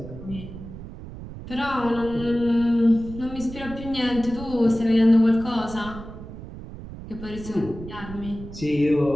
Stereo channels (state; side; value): noise; right; rumble, 13 dB below the sound